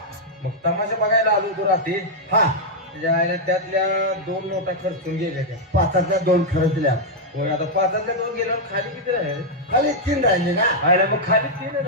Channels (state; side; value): normal; both; correlation -0.03